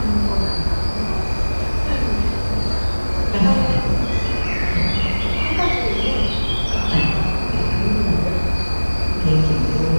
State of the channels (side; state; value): both; inverted; correlation -1.00